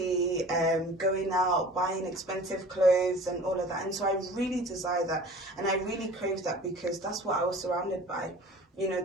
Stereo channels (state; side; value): normal; both; correlation 0.43